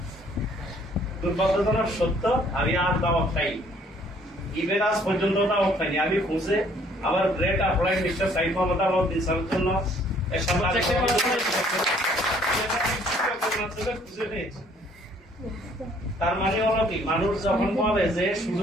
দুর্ভাগ্যজনক সত্য, আমি আর দাওয়াত খাই, ইভেন আজ পর্যন্ত দাওয়াত খাইনি। আমি খুঁজে আমার great apply mister Saif Mohammad Alauddin স্যারের জন্য খুঁজে পেয়েছি। তার মানে হলো কি, মানুষ যখন বলে যে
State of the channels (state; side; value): normal; both; correlation 0.61